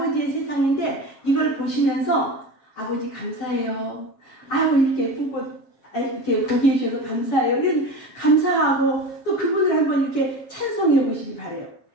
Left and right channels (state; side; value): late; right; 7.3 ms